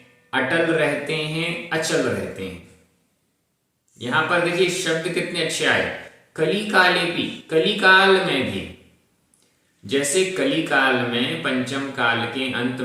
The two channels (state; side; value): identical; both; correlation 1.00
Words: अटल रहते हैं, अचल रहते हैं। यहां पर देखिए शब्द कितने अच्छे आए, कलिकाले भी, कलिकाल में भी। जैसे कलिकाल में पंचम काल के अंत